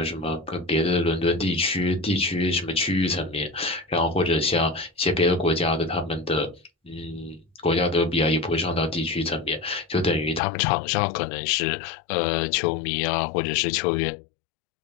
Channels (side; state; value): right; drops out; at 10.4 s